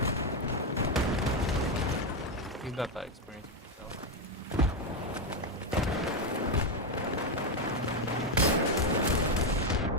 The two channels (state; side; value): normal; both; correlation 0.07